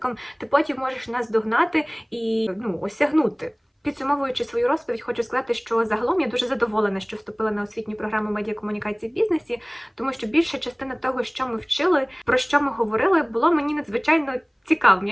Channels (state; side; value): identical; both; correlation 1.00